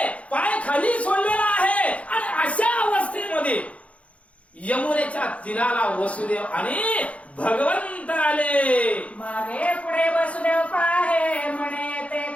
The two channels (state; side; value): late; right; 0.064 ms